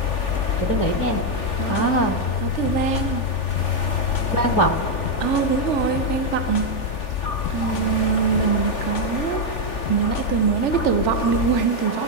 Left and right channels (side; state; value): right; late; 3.4 ms